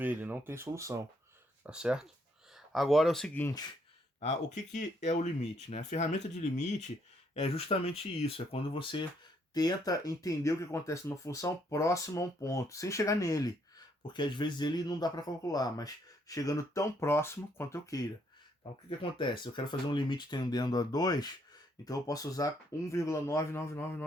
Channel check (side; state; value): both; normal; correlation 0.71